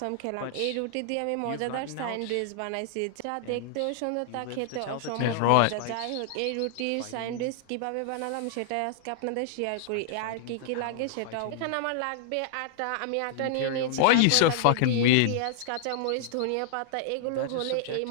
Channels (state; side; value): different; both; correlation -0.01